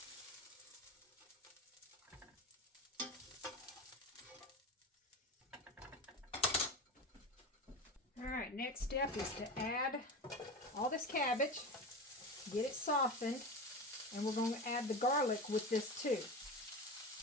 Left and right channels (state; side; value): normal; both; correlation 0.26